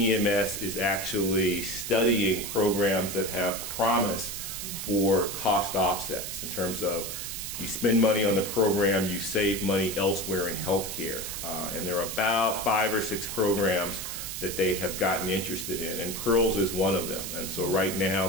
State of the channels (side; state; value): right; noise; hiss, 6 dB below the sound